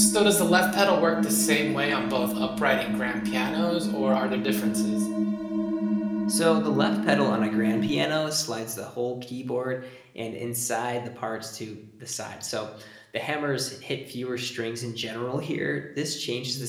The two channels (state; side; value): identical; both; correlation 1.00